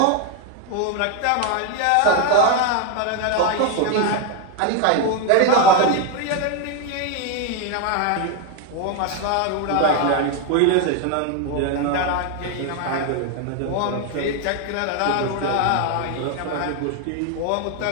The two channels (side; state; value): both; different; correlation 0.01